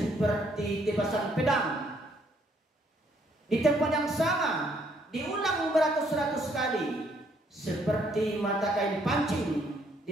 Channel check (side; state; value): both; normal; correlation 0.68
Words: tebasan pedang. Di tempat yang sama diulang beratus-ratus kali, seperti mata kain pancing